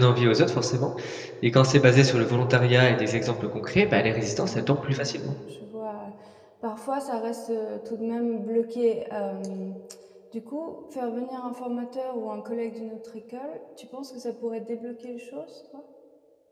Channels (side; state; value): both; identical; correlation 1.00